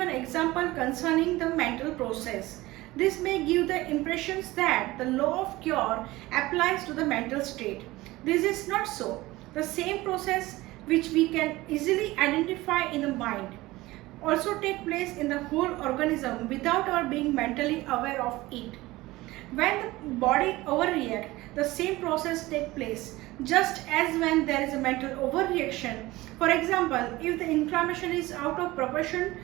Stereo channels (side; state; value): left; quieter; 19.1 dB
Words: example concerning the mental process. This may give the impressions that the law of cure applies to the mental state. This is not so. The same process which we can easily identify in the mind also take place in the whole organism without our being mentally aware of it. When the body overreacts, the same process takes place, just as when there is a mental overreaction. For example, if the inflammation is out of proportion